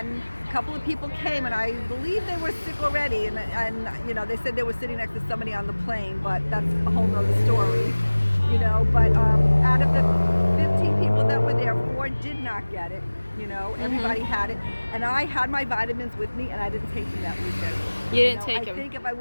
a couple of people came, and I believe they were sick already, and they said they were sitting next to somebody on the plane, but that's a whole nother story, but out of the 15 people that were there, 4 did not get it, everybody had it, and I had my vitamins with me, and I didn't take them that weekend. You didn't take them? I think if I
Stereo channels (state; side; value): inverted; both; correlation -1.00